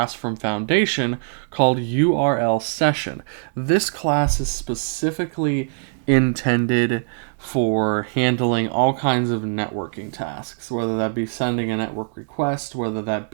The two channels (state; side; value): silent; left; 64 dB below the other